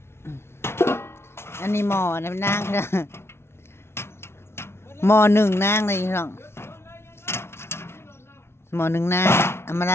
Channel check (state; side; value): late; right; 0.12 ms